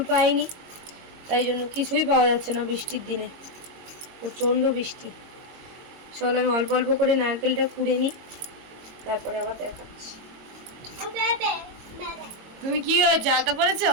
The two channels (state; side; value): late; left; 22 ms